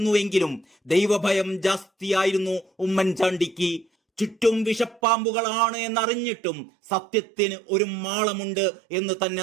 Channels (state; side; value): drops out; left; at 5.0 s